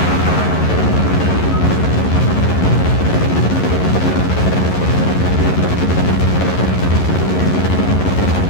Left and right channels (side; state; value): right; late; 11 ms